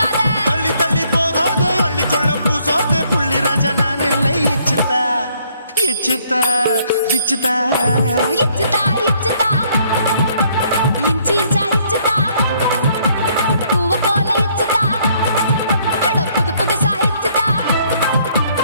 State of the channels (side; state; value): both; inverted; correlation -0.66